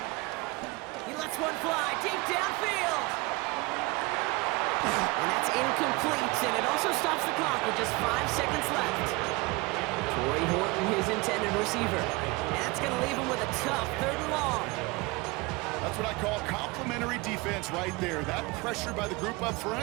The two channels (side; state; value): left; quieter; 24.6 dB